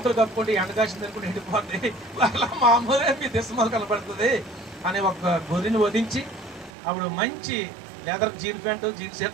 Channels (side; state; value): left; drops out; at 6.7 s